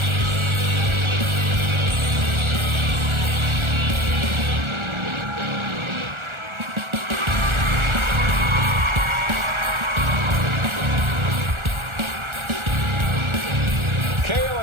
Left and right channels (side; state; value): left; late; 1.4 ms